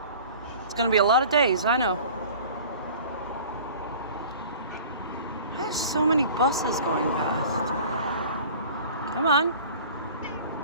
It's gonna be a lot of days, I know. I have so many buses going past. Come on.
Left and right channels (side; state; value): both; inverted; correlation -0.44